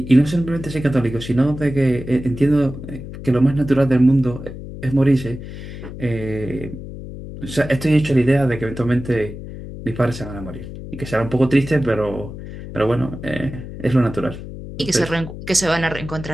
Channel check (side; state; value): left; noise; hum, 11 dB below the sound